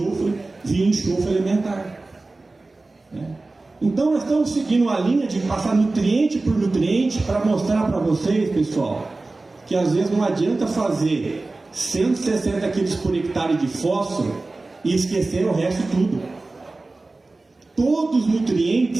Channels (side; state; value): left; quieter; 3.3 dB